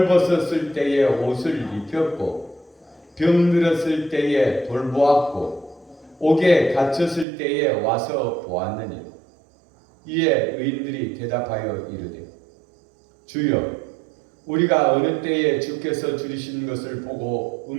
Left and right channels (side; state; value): left; drops out; at 7.2 s